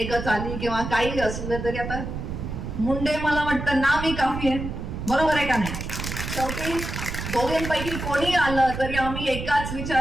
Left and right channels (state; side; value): noise; right; rumble, 6 dB below the sound